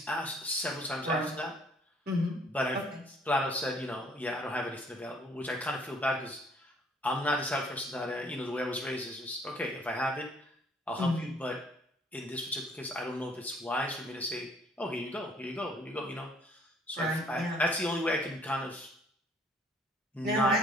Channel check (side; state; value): both; normal; correlation 0.60